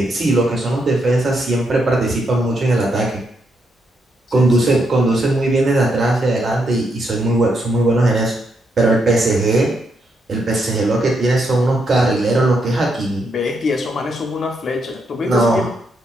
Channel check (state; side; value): normal; both; correlation 0.79